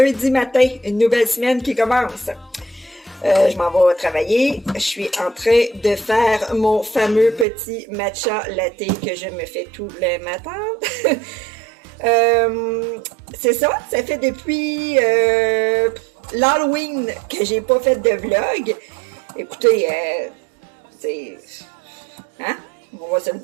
matin, une nouvelle semaine qui commence. Je m'en vais travailler. Je suis en train de faire mon fameux petit matcha latte que je me fais tous les matins. C'est ça fait depuis l'Halloween que j'ai pas fait de vlog. Écoutez, hein? On va se le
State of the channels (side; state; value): left; drops out; at 7.5 s